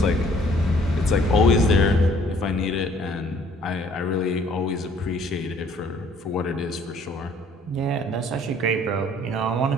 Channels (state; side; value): normal; both; correlation 0.59